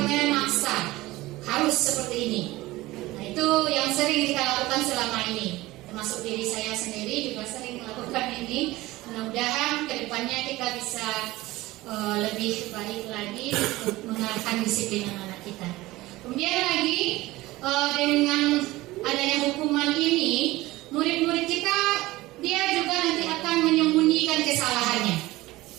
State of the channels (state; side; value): quieter; left; 18.7 dB